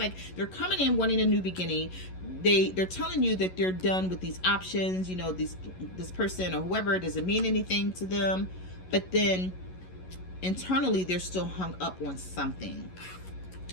they're coming in wanting a new beginning. They're telling you that they're done with these options, you know, this person or whoever doesn't mean anything to them, but then internally they're still hung up on something.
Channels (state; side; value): late; right; 11 ms